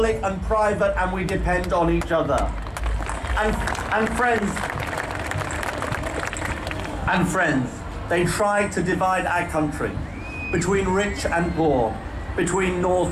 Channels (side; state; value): both; identical; correlation 1.00